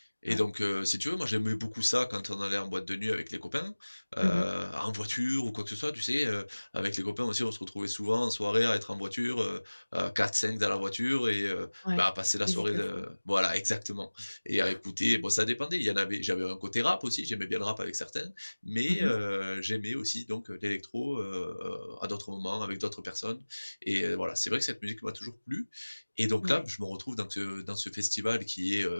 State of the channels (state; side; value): inverted; both; correlation -1.00